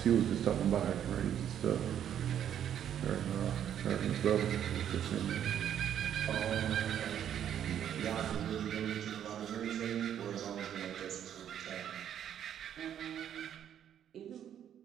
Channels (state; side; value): quieter; left; 9.8 dB